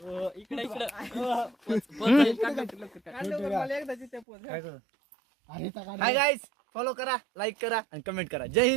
इकडे इकडे हाय गाईज फॉलो करा लाईक करा आणि कमेंट करा. जय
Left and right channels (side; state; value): left; drops out; at 4.2 s